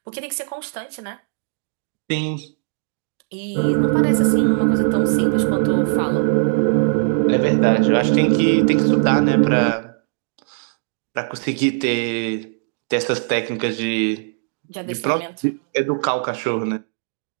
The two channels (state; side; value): silent; left; digital silence